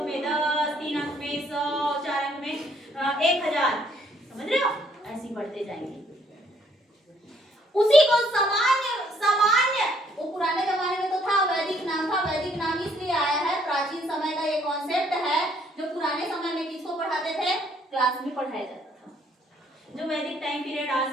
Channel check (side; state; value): both; normal; correlation 0.66